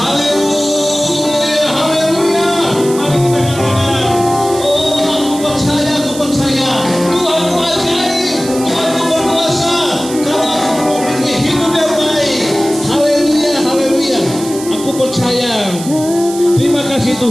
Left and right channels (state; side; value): noise; right; hiss, 12 dB below the sound